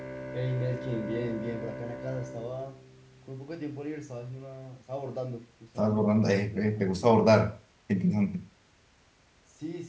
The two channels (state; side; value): identical; both; correlation 1.00